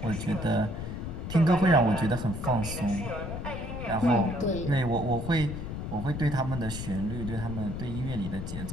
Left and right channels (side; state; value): left; noise; rumble, 6 dB below the sound